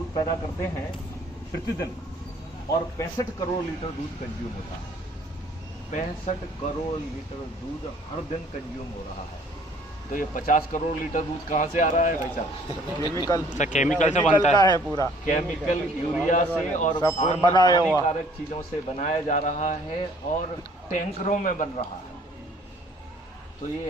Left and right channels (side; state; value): both; normal; correlation 0.58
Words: पैदा करते हैं प्रतिदिन और 65 करोड़ लीटर दूध कंज्यूम होता है। 65 करोड़ लीटर दूध हर दिन कंज्यूम हो रहा है। तो ये 50 करोड़ लीटर दूध कहाँ से आ रहा है भाई साहब? केमिकल से बनता है पूरा। केमिकल, यूरिया से और हानिकारक चीजों से बनाया जा रहा है और टैंकरों में बन रहा है। तो